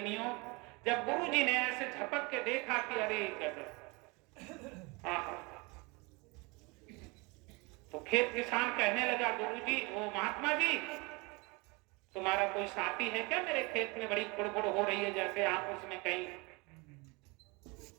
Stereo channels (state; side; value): quieter; left; 27.3 dB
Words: जब गुरुजी ने ऐसे झपक के देखा कि अरे तो खेत किसान कहने लगा, गुरुजी वो महात्मा जी तुम्हारा कोई साथी है क्या? मेरे खेत में बड़ी खुड़बुड़ हो रही है, जैसे आप उसमें कहीं